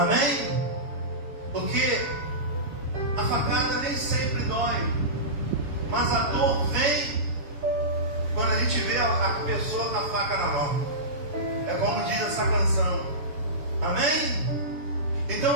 Porque a facada nem sempre dói, mas a dor vem quando a gente vê a pessoa com a faca na mão. É como diz essa canção. Amém?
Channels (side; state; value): left; late; 7.0 ms